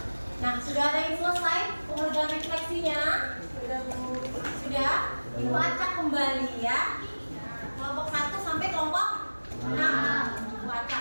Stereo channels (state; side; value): inverted; both; correlation -1.00